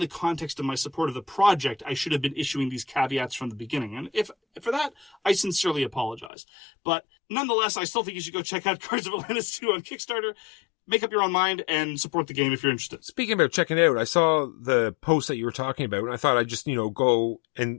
context of my support of the project, I should have been issuing these caveats from the beginning. And if for that, I sincerely apologize. But nonetheless, I still think you should go check out Guards of Atlantis 2 on Kickstarter. Make up your own mind and support the game if you're interested. Speaking about checking out, I saw the post that you were talking about, and I thought I'd just, go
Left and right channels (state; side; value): drops out; right; at 6.3 s